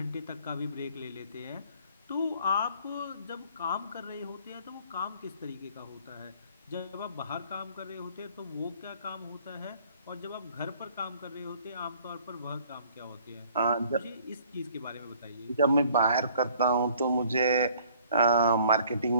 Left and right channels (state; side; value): inverted; both; correlation -0.57